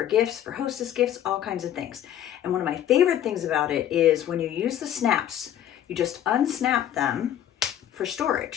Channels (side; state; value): right; quieter; 11.0 dB